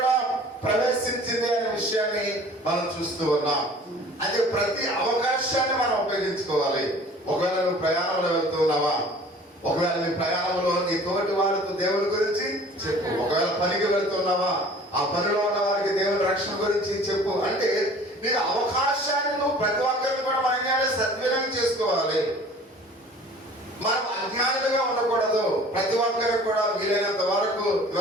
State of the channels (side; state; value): both; normal; correlation 0.47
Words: ప్రవేశించింది అనే విషయాన్ని మనం చూస్తూ ఉన్నాం. అది ప్రతి అవకాశాన్ని మనం ఉపయోగించుకోవాలి. ఒకవేళ నువ్వు ప్రయాణంలో వెళ్తున్నావా, ఒకవేళ నీ ప్రయాణంలో నీ తోటి వారితో దేవుని గురించి చెప్పు. ఒకవేళ పనికి వెళ్తున్నావా, ఆ పనిలో ఉన్న వారికి దేవుని రక్షణ గురించి చెప్పు. అంటే నీకు అవకాశాన్ని నువ్వు ప్రతి ఒక్కరిని కూడా మనం సద్వినియోగం చేసుకోవాలి. మనం అజ్ఞానులుగా ఉండకూడదు. ప్రతి ఒక్కరికి కూడా వీలైనంత వరకు